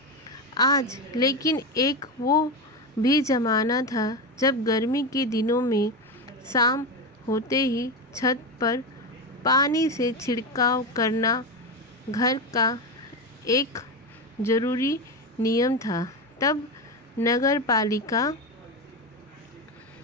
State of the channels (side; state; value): both; normal; correlation 0.16